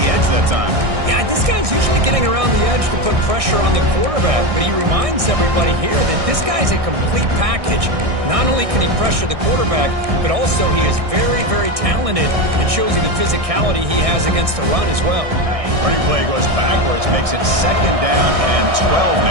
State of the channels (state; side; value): late; left; 1.6 ms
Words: edge that time. Yeah, this guy's usually getting around the edge to put pressure on the quarterback, but he reminds everybody here that this guy's a complete package. Not only can he pressure the quarterback, but also he is very, very talented and shows you the physicality he has against the run as well. Running play goes backwards, makes it 2nd down and 12